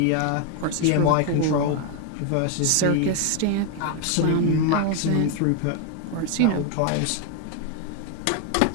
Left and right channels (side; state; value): both; different; correlation 0.01